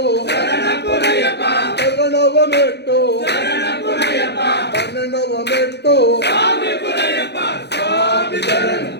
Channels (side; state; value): right; late; 0.49 ms